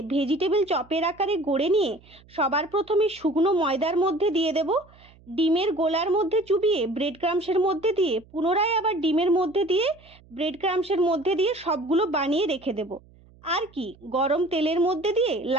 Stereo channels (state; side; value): noise; right; hum, 27 dB below the sound